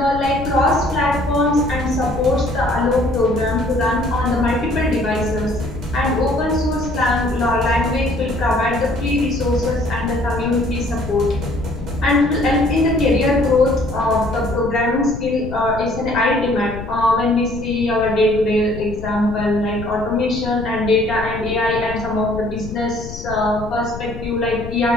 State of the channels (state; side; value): noise; left; rumble, 11 dB below the sound